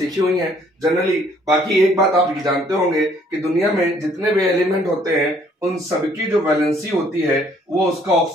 हुई हैं जनरली। बाकी एक बात आप ये जानते होंगे कि दुनिया में जितने भी एलिमेंट होते हैं उन सबकी जो वैलेंसी होती है वो उसका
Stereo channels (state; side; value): normal; both; correlation 0.62